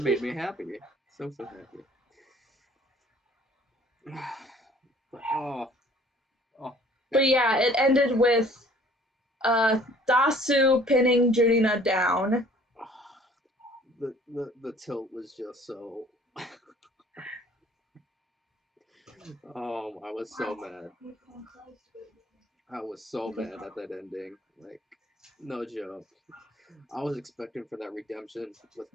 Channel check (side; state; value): both; normal; correlation 0.54